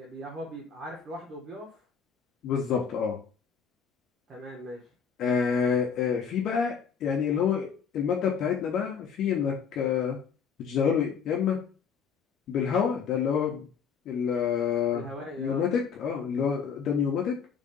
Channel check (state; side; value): quieter; right; 6.7 dB